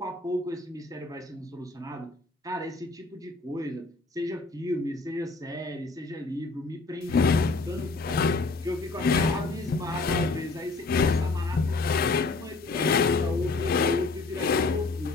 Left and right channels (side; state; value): right; quieter; 3.6 dB